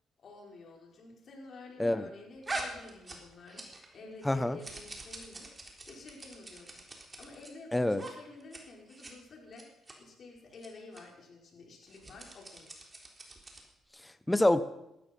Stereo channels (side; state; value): both; normal; correlation 0.96